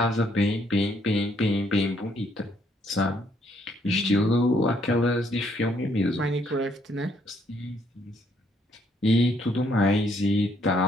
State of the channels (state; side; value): normal; both; correlation 0.69